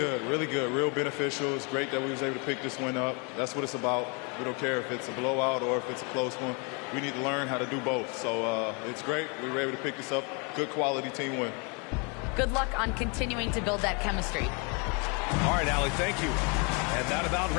real beneficial. It's great that we was able to pick this one up. That's what it's about. We don't care if it's a blowout or if it's a close one. We need to learn how to do both. So it's great. We were able to pick this up. Good quality team win. Good luck on continuing to build that chemistry. All right, Allie, thank you. And that about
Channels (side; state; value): right; quieter; 33.3 dB